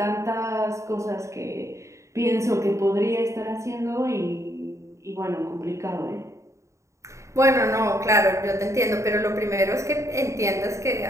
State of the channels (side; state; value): left; late; 0.14 ms